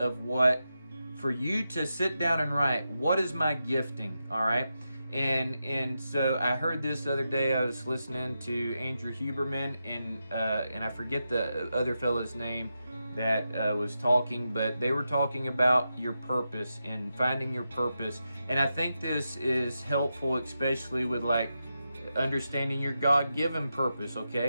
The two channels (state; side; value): inverted; both; correlation -0.88